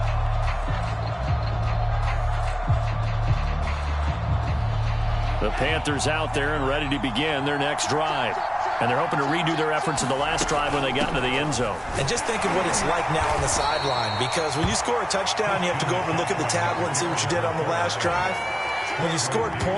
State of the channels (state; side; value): identical; both; correlation 1.00